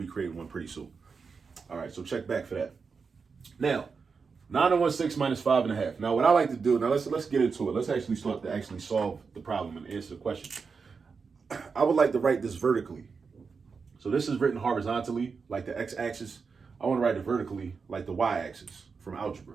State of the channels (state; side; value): quieter; left; 5.2 dB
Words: creating one pretty soon. All right, so check back for that. Now, 9 1/6 minus 5 1/2. Now, what I like to do, now let's get into it. Let's actually start to actually solve the problem and answer the question. I would like to write this vertically. So this is written horizontally, like the x-axis. I want to write it vertically, like the y-axis from algebra.